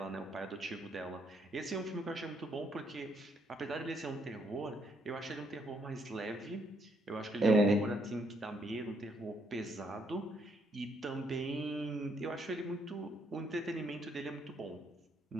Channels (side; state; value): both; normal; correlation 0.72